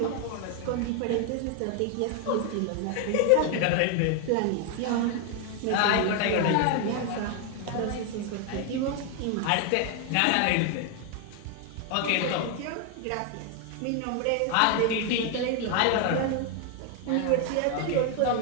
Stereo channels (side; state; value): both; different; correlation 0.01